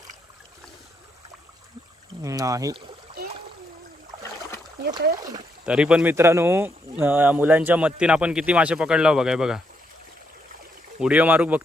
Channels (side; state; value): both; normal; correlation 0.78